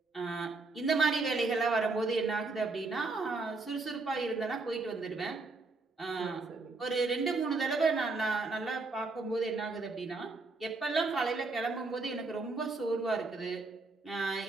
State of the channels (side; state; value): left; quieter; 3.6 dB